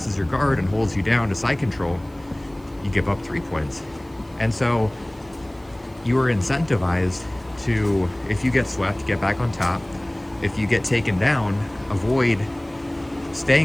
your guard and holds you down to side control, you give up 3 points. And so you are incentivized to, if you get swept, get back on top. If you get taken down, avoid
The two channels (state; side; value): noise; right; hiss, 30 dB below the sound